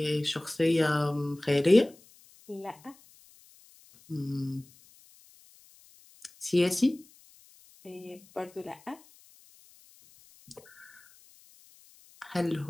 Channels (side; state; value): left; noise; hiss, 26 dB below the sound